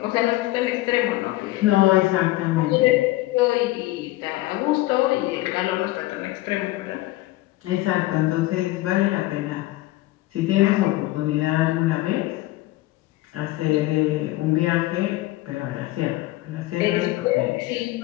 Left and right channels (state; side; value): quieter; right; 17.9 dB